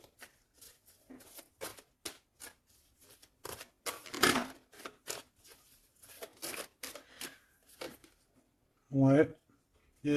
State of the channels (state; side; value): identical; both; correlation 1.00